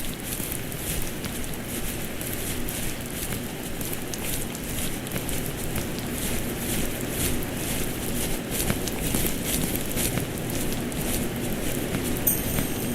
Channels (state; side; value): identical; both; correlation 1.00